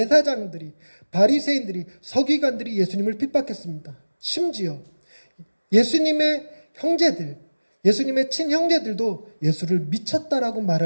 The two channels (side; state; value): both; inverted; correlation -1.00